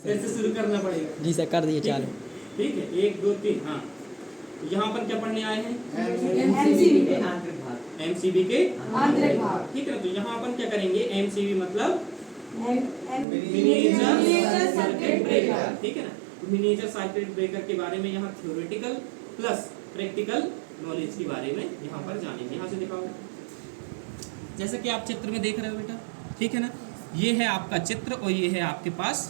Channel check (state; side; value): drops out; left; at 13.2 s